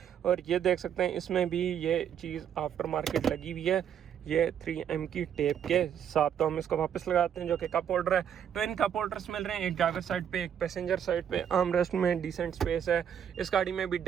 और ये देख सकते हैं इसमें भी ये चीज़ आफ्टर मार्केट लगी हुई है। ये 3M की टेप के साथ। तो हम इसको वापस लगाते हैं, जो कि कप होल्डर है। ट्विन कप होल्डर्स मिल रहे हैं, एक ड्राइवर साइड पे एक पैसेंजर साइड पे। आर्म रेस्ट में डिसेंट स्पेस है। इस गाड़ी में भी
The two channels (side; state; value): left; quieter; 8.9 dB